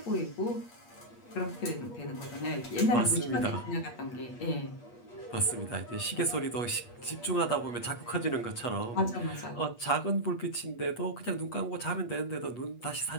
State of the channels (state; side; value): late; right; 8.4 ms